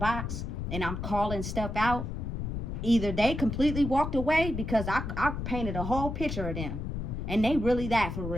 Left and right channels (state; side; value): noise; left; rumble, 4 dB below the sound